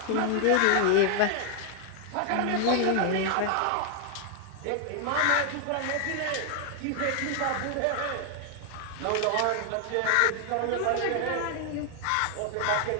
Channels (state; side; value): different; both; correlation 0.00